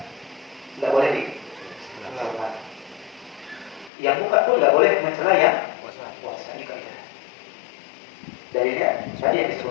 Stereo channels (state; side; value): drops out; right; at 3.9 s